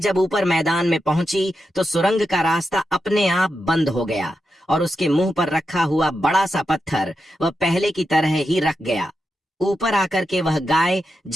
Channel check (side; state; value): both; normal; correlation 0.87